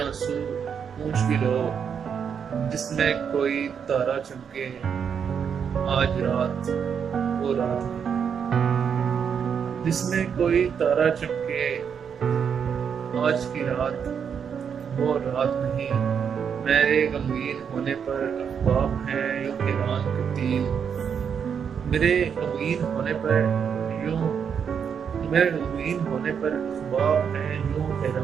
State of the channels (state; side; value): quieter; left; 7.2 dB